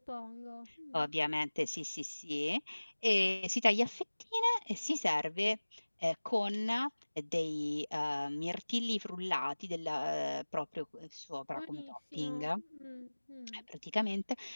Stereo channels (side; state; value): both; inverted; correlation -1.00